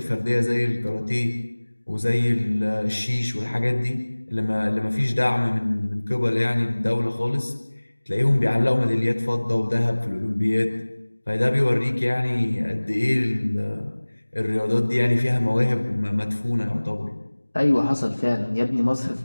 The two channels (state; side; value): inverted; both; correlation -1.00